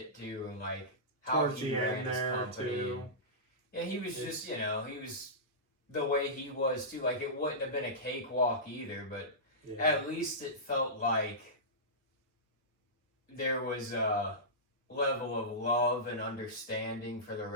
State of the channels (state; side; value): normal; both; correlation -0.16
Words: too, and how towards he ran his company. Too. Yeah, he was just, he was the way he was too. It wouldn't have been a cakewalk either, but at least it felt like there was a level of love and understanding for the